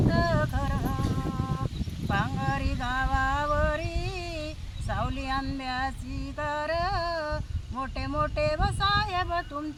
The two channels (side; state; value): both; identical; correlation 1.00